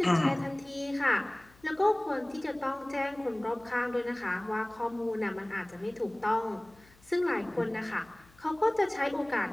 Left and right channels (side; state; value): left; noise; hum, 28 dB below the sound